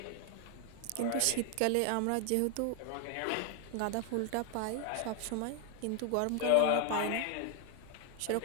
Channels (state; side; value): different; both; correlation 0.01